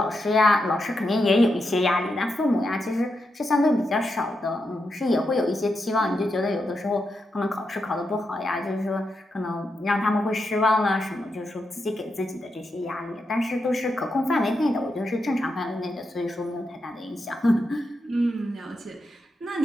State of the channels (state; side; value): normal; both; correlation 0.85